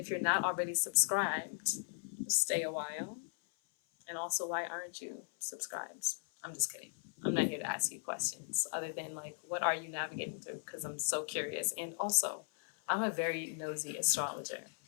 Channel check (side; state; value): right; silent; 53 dB below the other